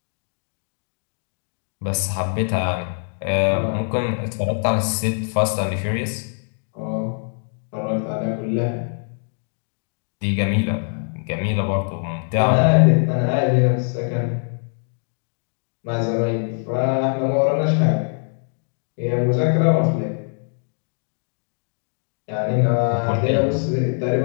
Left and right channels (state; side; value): silent; right; 64 dB below the other